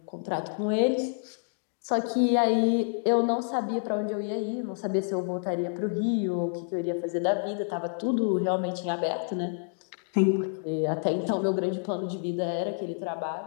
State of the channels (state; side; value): silent; right; digital silence